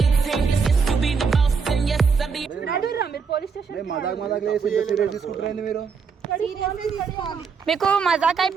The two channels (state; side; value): quieter; left; 5.6 dB